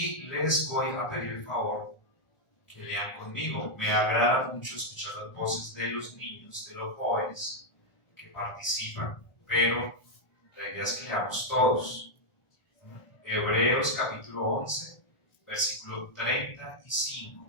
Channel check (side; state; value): right; late; 1.4 ms